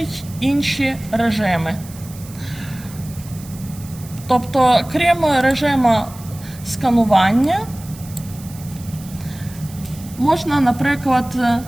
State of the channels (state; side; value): noise; right; hiss, 19 dB below the sound